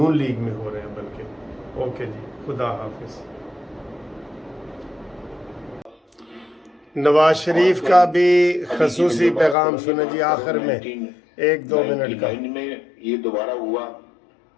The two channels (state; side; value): drops out; right; at 9.6 s